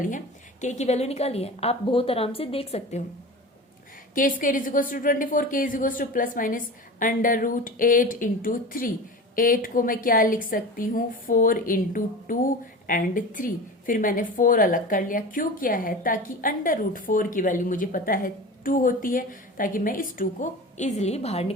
है, k की वैल्यू निकाली है। आप बहुत आराम से देख सकते हो। k² is equals to 24, k is equals to plus minus √8 into 3। 8 को मैं क्या लिख सकती हूँ, 4 इंटू 2 एंड 3। फिर मैंने 4 अलग कर लिया। क्यों किया है, ताकि √4 की वैल्यू मुझे पता है 2 होती है, ताकि मैं इस 2 को इजिली बाहर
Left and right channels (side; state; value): both; normal; correlation 0.32